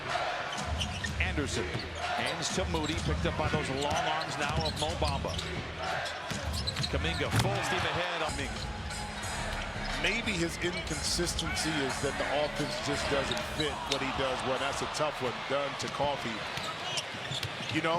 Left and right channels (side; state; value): both; identical; correlation 1.00